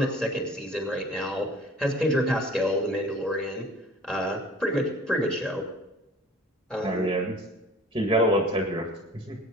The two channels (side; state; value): both; normal; correlation 0.47